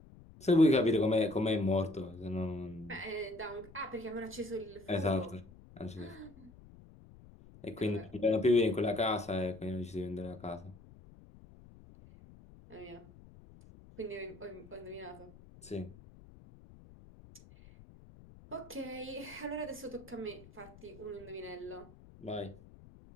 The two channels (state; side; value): noise; left; rumble, 21 dB below the sound